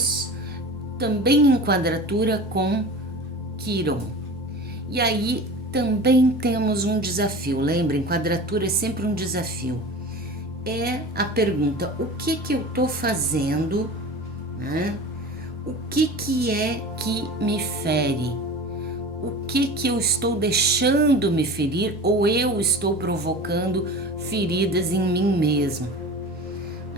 também em quadratura com Quirón. E aí também temos um desafio. Lembrem, quadratura é sempre um desafio. É a pergunta: o que eu estou fazendo, né? O que é que me fere? O que eu estou deixando me ferir ou eu estou provocando feridas em mim mesmo?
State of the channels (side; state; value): both; normal; correlation 0.35